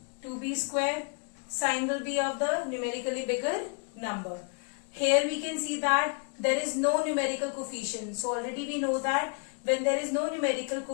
2b square. Sign will be of the numerically bigger number. Here we can see that there is no numerical coefficient. So already we know that when there is no numerical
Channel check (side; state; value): right; quieter; 39.3 dB